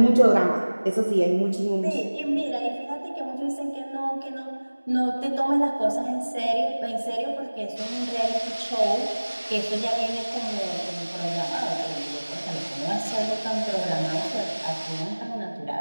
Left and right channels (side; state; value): both; inverted; correlation -1.00